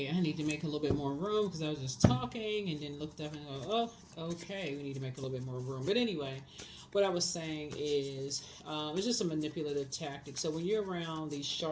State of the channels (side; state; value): both; identical; correlation 1.00